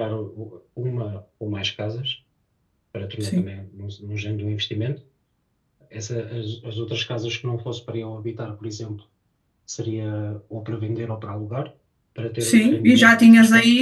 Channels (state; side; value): identical; both; correlation 1.00